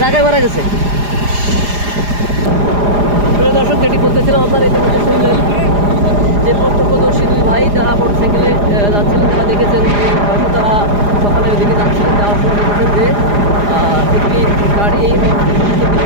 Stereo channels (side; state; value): left; late; 4.9 ms